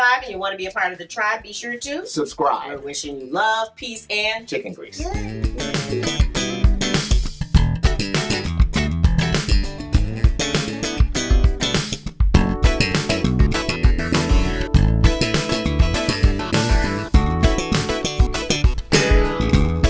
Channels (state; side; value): identical; both; correlation 1.00